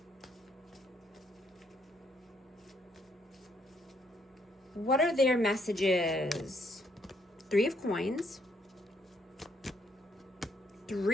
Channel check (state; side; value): normal; both; correlation 0.71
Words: What are their messages? 3 of Coins,